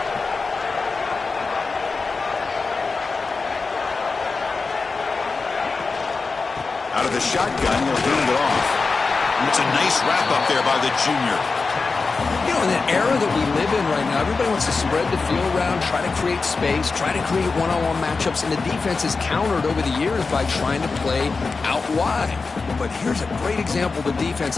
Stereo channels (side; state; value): right; quieter; 4.3 dB